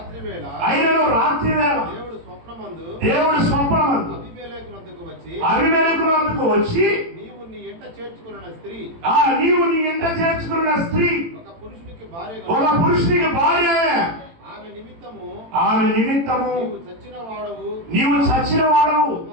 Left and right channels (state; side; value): late; left; 18 ms